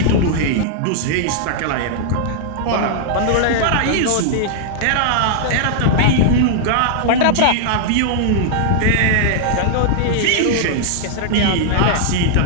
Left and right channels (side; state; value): both; different; correlation -0.01